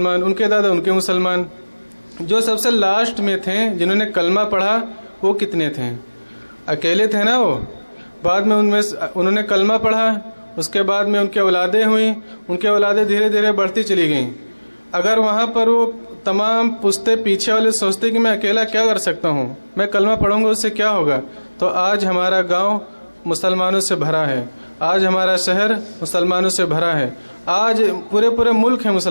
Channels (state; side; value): inverted; both; correlation -1.00